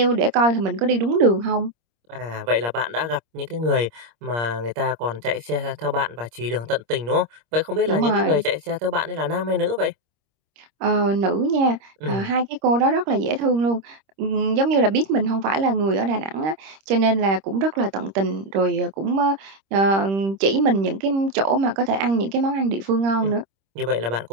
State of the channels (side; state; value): left; late; 26 ms